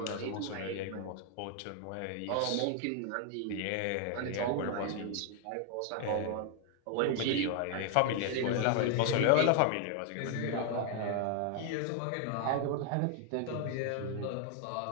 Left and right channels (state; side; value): different; both; correlation 0.00